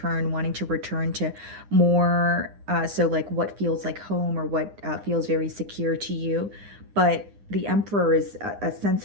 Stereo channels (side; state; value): left; late; 9.8 ms